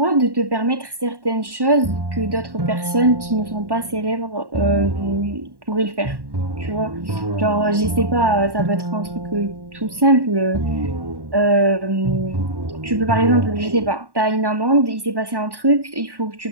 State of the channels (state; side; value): late; left; 1.1 ms